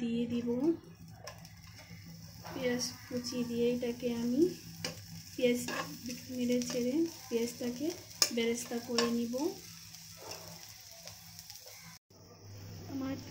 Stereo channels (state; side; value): identical; both; correlation 1.00